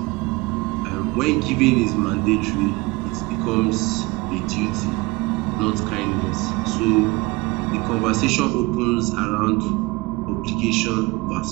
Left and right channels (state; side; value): quieter; left; 23.5 dB